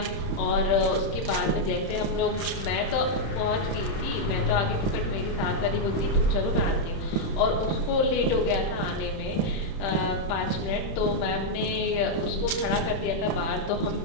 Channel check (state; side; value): late; right; 31 ms